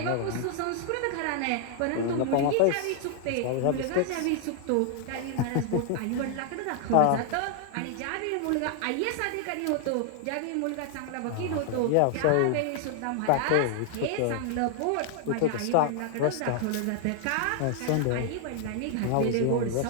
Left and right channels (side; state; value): both; different; correlation 0.00